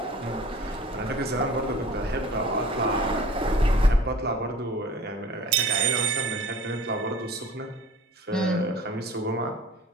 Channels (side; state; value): both; normal; correlation 0.44